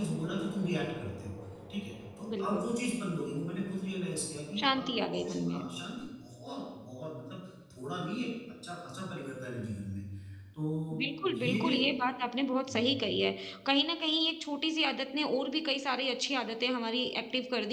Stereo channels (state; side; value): identical; both; correlation 1.00